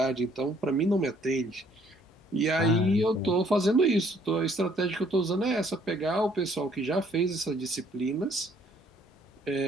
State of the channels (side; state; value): both; normal; correlation 0.63